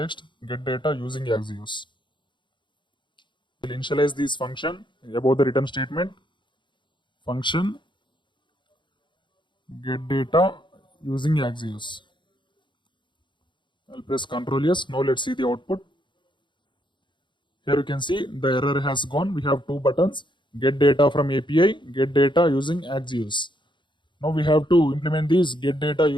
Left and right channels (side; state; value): right; late; 0.23 ms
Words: get data using Axios. I will initialize this function above the return statement. Function get data using Axios. I'll press Ctrl S. Now let's see the output. Here you can see the error has gone. We have two buttons, get data from API, get data using Axios. Now we have to implement this get data